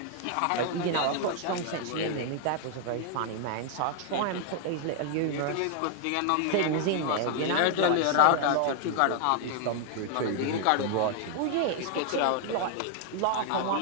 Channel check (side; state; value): both; different; correlation 0.00